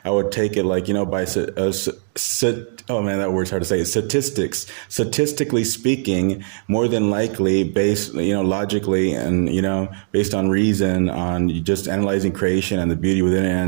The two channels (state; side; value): silent; left; digital silence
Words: I would take it like, by Oh man, that word's hard to say. Statistics. Statistically speaking, more than likely, based, logically, and based on reason, on just analyzing creation and the beauty within it,